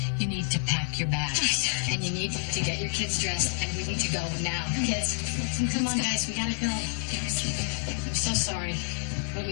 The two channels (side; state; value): right; silent; digital silence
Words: You need to pack your bags. And you need to get your kids dressed, and we need to go now. Kids, come on, guys, we gotta go. I'm so sorry, but